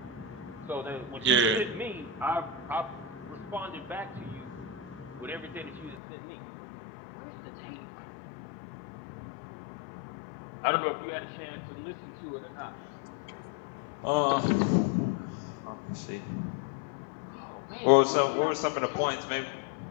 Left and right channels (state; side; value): drops out; right; at 6.0 s